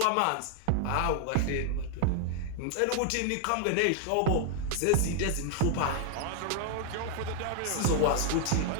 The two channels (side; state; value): both; different; correlation 0.00